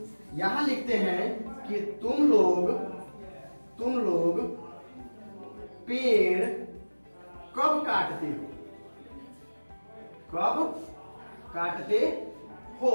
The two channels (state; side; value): inverted; both; correlation -1.00